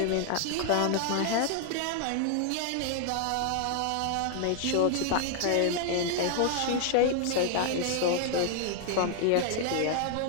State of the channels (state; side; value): different; both; correlation 0.00